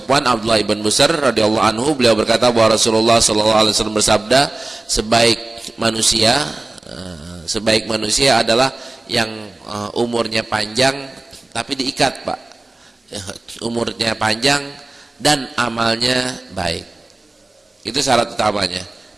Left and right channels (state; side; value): quieter; left; 3.0 dB